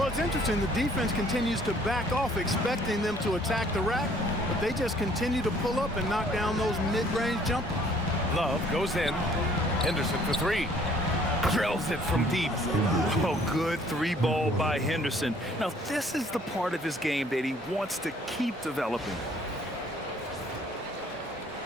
it's interesting. The defense continues to back off, expecting them to attack the rack, but they just continue to pull up and knock down those mid-range jumpers. Love goes in. Henderson for 3. Drills it from deep. Oh, good 3-ball by Henderson. Now, this is the part of his game that he wants to keep developing.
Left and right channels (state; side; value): normal; both; correlation 0.59